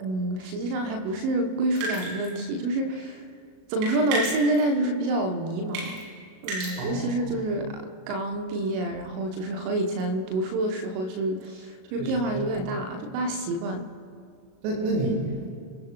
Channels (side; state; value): left; late; 38 ms